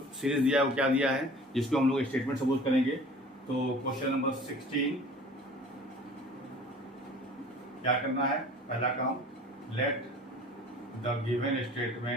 सीरीज दिया है वो क्या दिया है, जिसको हम लोग स्टेटमेंट सपोज करेंगे। तो क्वेश्चन नंबर 16 क्या करना है, पहला काम, let the given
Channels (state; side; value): normal; both; correlation 0.46